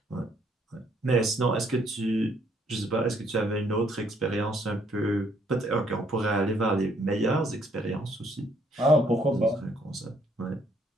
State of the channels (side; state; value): both; normal; correlation 0.67